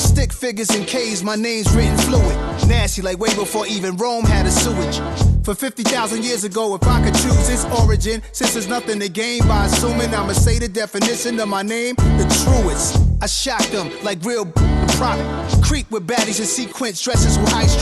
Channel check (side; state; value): both; identical; correlation 1.00